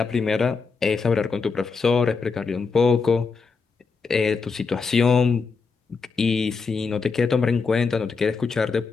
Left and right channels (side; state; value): right; quieter; 4.9 dB